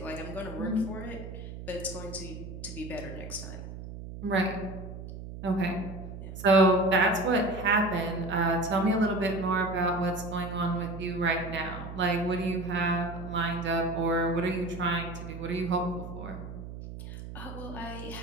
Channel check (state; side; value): noise; right; hum, 10 dB below the sound